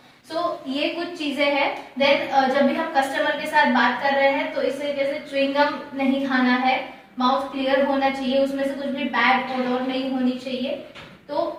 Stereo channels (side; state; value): both; identical; correlation 1.00